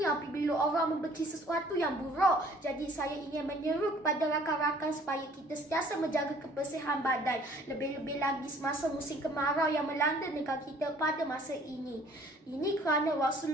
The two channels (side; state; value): both; normal; correlation 0.55